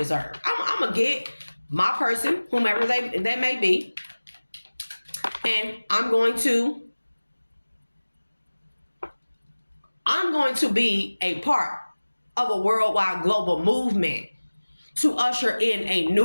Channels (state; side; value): inverted; both; correlation -1.00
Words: I'm going to get my person, whomever they may be. And I'm going to be a part of a worldwide global movement to usher in a